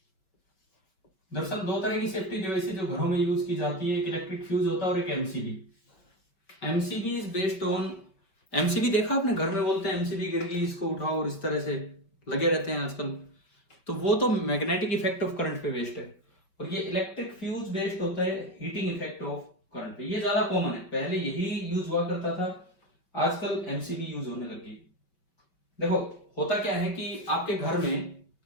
दरअसल दो तरह की सेफ्टी डिवाइसेज जो घरों में यूज की जाती है, एक इलेक्ट्रिक फ्यूज होता है और एक MCB. MCB is based on, MCB देखा आपने, घर में बोलते हैं एमसीबी गिर गई इसको उठाओ, और इस तरह से लगे रहते हैं आजकल। तो वो तो मैग्नेटिक इफेक्ट ऑफ करंट पे बेस्ड है, और ये इलेक्ट्रिक फ्यूज बेस्ड होता है हीटिंग इफेक्ट ऑफ करंट पे। ये ज्यादा कॉमन है, पहले यही यूज हुआ करता था, आजकल एमसीबी यूज होने लगी। देखो होता क्या है कि आपके घर में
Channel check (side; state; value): right; late; 5.2 ms